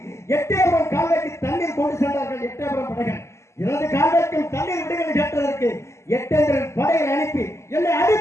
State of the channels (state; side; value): late; right; 0.13 ms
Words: எட்டயபுரம் கால்வாய்க்கு தண்ணீர் கொண்டு சென்றார்கள். எட்டயபுரம் படைகள் எனது கால்வாய்க்கும் தண்ணீர் விடுங்கள் கேட்டதற்கு எட்டேந்திரன் படைகளை அனுப்பி என்னை